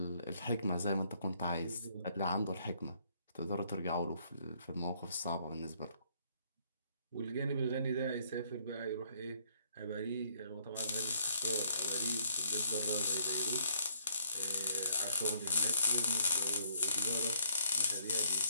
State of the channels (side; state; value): both; inverted; correlation -0.67